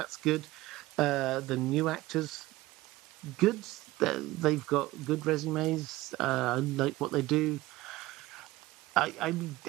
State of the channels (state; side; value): quieter; left; 18.3 dB